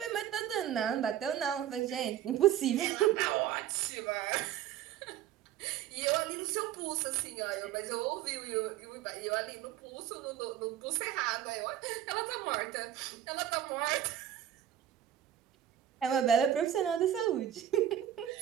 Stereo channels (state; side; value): quieter; left; 11.1 dB